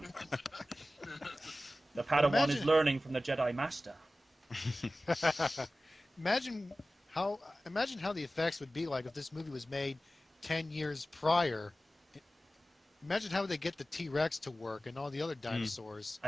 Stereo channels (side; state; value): both; normal; correlation 0.96